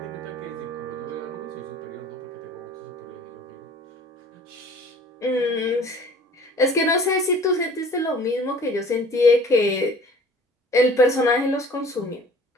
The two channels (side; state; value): both; normal; correlation 0.49